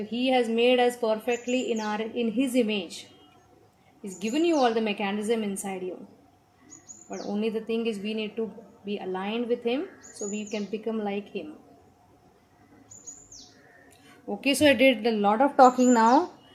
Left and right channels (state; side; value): identical; both; correlation 1.00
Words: He has made us perfectly in His image. He's given you all the mechanism inside you. But only the thing is, we need to be aligned with Him so we can become like Him. Okay, so I did a lot of talking now.